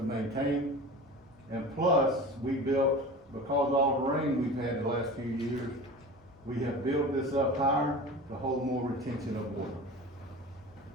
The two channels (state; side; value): normal; both; correlation 0.34